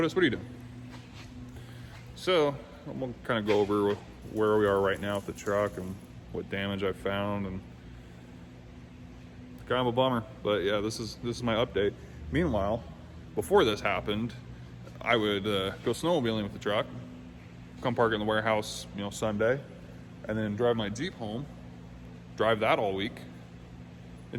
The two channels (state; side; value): identical; both; correlation 1.00